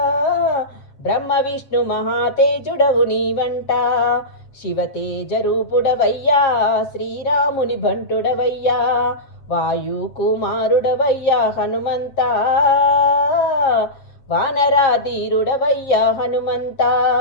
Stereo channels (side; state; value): right; late; 7.7 ms